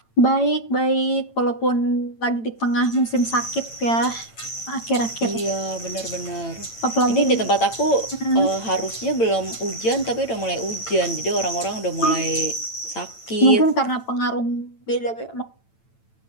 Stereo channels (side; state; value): right; late; 8.9 ms